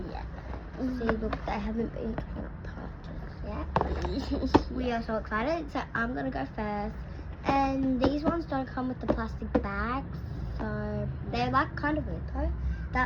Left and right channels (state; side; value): identical; both; correlation 1.00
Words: Yeah. See, look, they haven't been taken apart just yet. We are so excited. So I'm gonna go first. And these ones don't come with the plastic bags, so they're like kind of weird though.